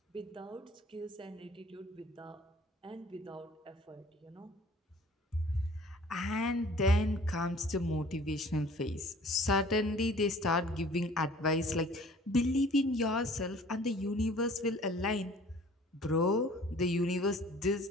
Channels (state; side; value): normal; both; correlation 0.51